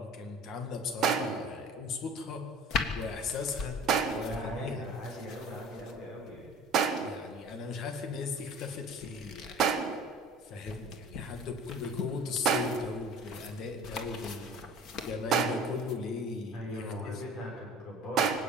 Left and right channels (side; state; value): both; normal; correlation 0.44